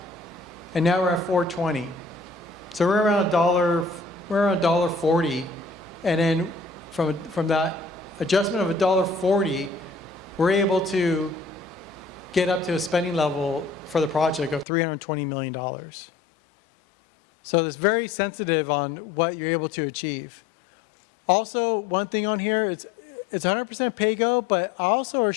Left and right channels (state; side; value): drops out; right; at 14.7 s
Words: and now we're at $4.20. So we're around $1.40, and then from that adjustment of $1.40, we're able to get up to a spending level for the project of $320 million. So it's very sensitive on what you're able to achieve. Also, one thing on here is it's 100% pay-go, but also are